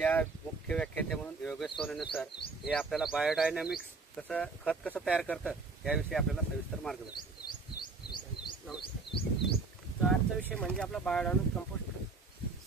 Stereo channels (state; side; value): quieter; left; 4.0 dB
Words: मुख्य व्याख्याते म्हणून योगेश सोनवणे सर हे आपल्याला बायोडायनॅमिक्स खत कसं तयार करतं याविषयी आपल्याला सविस्तर मार्गदर्शन. नमस्कार. तर आजचा विषय म्हणजे आपला बायोडायनॅमिक कंपोस्ट खत.